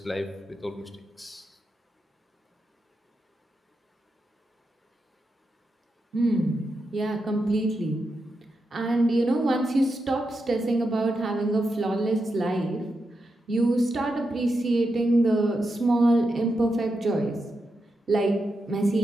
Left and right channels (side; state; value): both; normal; correlation 0.87